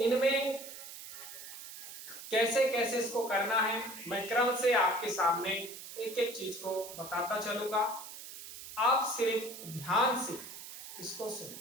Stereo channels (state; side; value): noise; right; hiss, 12 dB below the sound